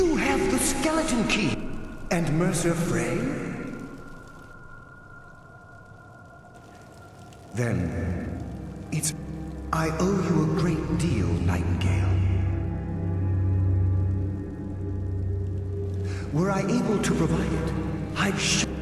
have the skeleton key! And Mercer Frey? Then, it's... I owe you a great deal, Nightingale. Were I able to provide it, I'd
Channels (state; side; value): identical; both; correlation 1.00